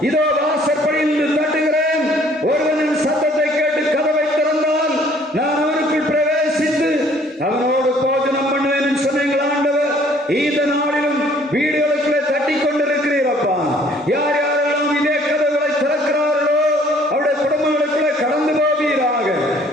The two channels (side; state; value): both; normal; correlation 0.58